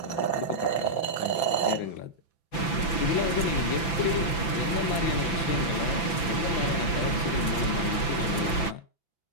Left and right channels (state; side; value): late; right; 5.9 ms